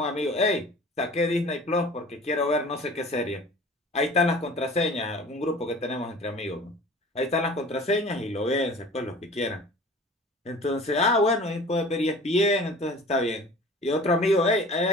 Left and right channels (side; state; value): both; normal; correlation 0.44